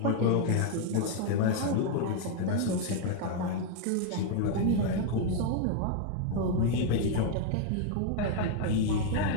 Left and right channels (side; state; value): both; different; correlation 0.00